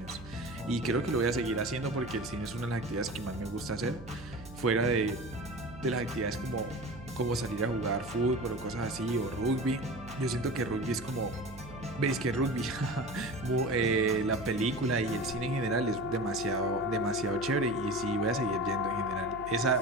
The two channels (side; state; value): right; noise; hum, 15 dB below the sound